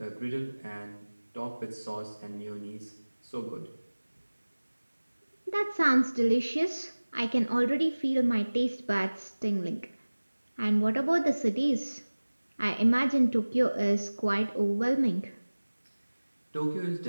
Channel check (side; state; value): both; inverted; correlation -1.00